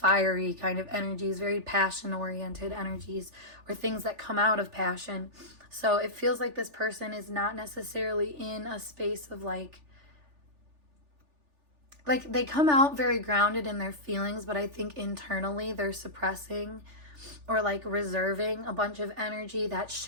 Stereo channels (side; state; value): left; late; 3.4 ms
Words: kind of energies, very passion oriented energies, or things that come out of passion. So it feels like this person is not necessarily in a space of like they come out very grounded in their feelings, but I think internally they're suppressing or like reserving a bunch of energy that